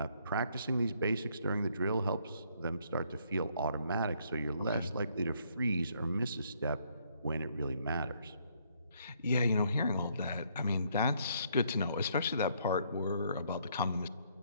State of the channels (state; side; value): inverted; both; correlation -0.69